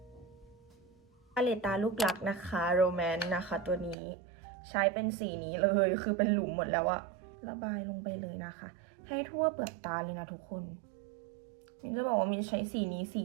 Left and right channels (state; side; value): drops out; left; at 4.0 s